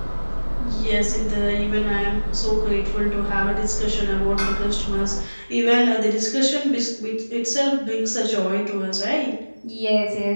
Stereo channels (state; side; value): inverted; both; correlation -1.00